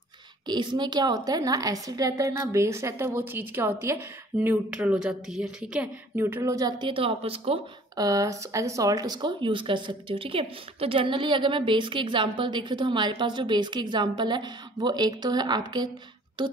कि इसमें क्या होता है, ना एसिड रहता है ना बेस रहता है, वो चीज़ क्या होती है, न्यूट्रल हो जाती है। ठीक है, न्यूट्रल हो जाती है तो आप उसको एज ए सॉल्ट उसको यूज़ कर सकते हो। ठीक है, तो जनरली अगर मैं बेस के एग्जांपल देखें तो हमारे पास जो बेस के एग्जांपल है वो एक तो है आपके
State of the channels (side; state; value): both; normal; correlation 0.53